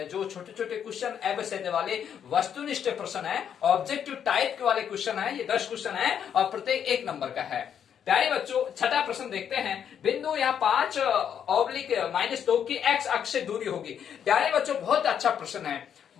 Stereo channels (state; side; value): quieter; right; 8.5 dB